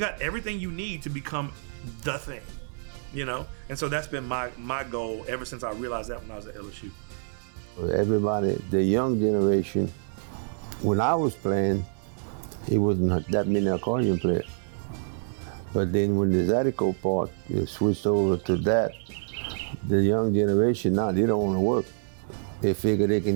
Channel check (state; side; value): silent; left; 60 dB below the other